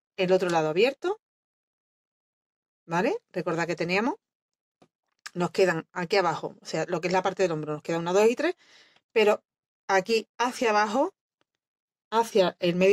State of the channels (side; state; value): both; identical; correlation 1.00